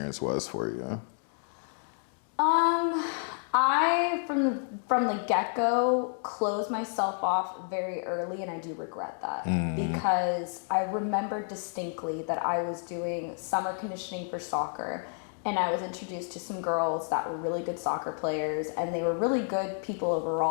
was for you? I from the get-go closed myself off very early, and I do regret that because I remember distinctly that I was doing summer conditioning for soccer, and I was introduced to some girls that were really good soccer players, and they were really good people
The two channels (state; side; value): silent; right; 55 dB below the other